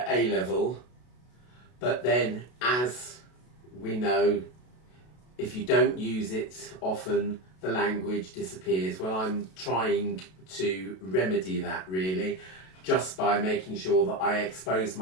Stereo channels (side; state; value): right; late; 32 ms